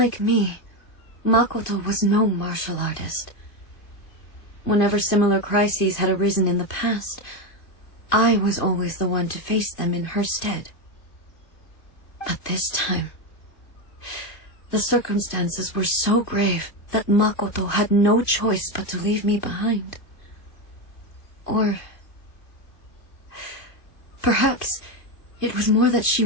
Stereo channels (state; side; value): late; right; 2.4 ms